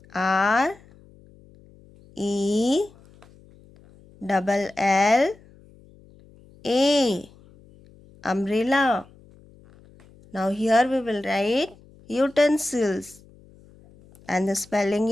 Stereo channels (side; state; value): left; noise; hum, 26 dB below the sound